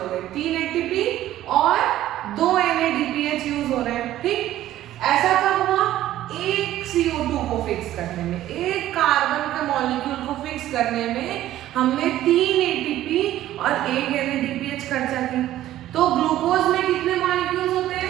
CO2 को फिक्स करने में, एक कार्बन के मॉलिक्यूल को फिक्स करने में हमने 3 ATP और 1 NADPH खर्चा की। तो ग्लूकोज में कितने मॉलिक्यूल्स होते हैं?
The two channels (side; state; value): left; quieter; 13.6 dB